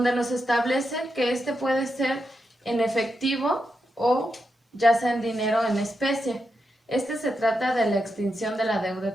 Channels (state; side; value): normal; both; correlation 0.86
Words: nos establece que puede ser en efectivo o ya sea en dinero o en especie. Se trata de la extinción de la deuda